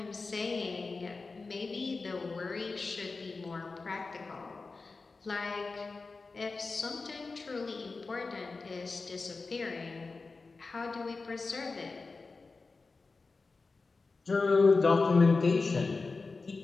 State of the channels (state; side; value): quieter; right; 4.0 dB